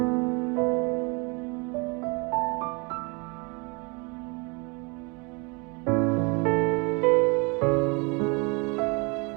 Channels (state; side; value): quieter; left; 30.7 dB